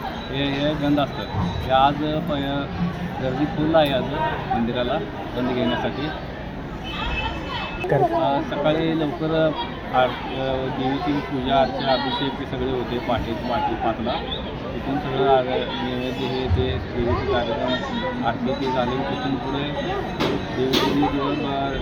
हे गंध असतं. ते आज गर्दी फुल आहे आज मंदिराला गंध घेण्यासाठी. सकाळी लवकर देवीची पूजा अर्चा अभिषेक हे सगळे होते. पहाटे 5ला तिथून सगळं नैवेद्य हे ते देवीचे कार्यक्रम आरती ते झाले. तिथून पुढे देवीचे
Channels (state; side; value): identical; both; correlation 1.00